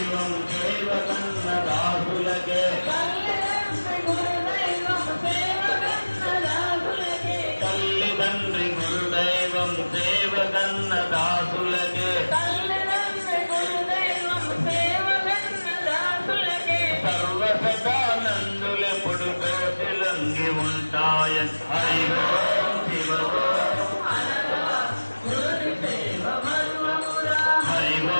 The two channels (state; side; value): inverted; both; correlation -1.00